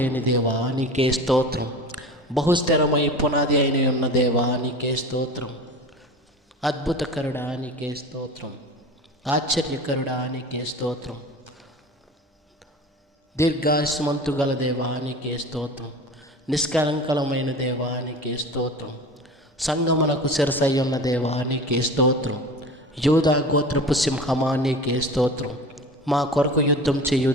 దేవా, నీకే స్తోత్రం. బహుస్థిరమై పునాది అయిన ఉన్న దేవా, నీకే స్తోత్రం. అద్భుతకరుడా, నీకే స్తోత్రం. ఆశ్చర్యకరుడా, నీకే స్తోత్రం. దీర్ఘాయుష్మంతు గల దేవా, నీకే స్తోత్రం. నిష్కలంకలమైన దేవా, నీకే స్తోత్రం. సంగమునకు శిరసయ్యున్న దేవా, నీకే స్తోత్రం. యూదా గోత్రపు సింహమా, నీకే స్తోత్రం. మా కొరకు యుద్ధం చేయు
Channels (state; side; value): normal; both; correlation 0.35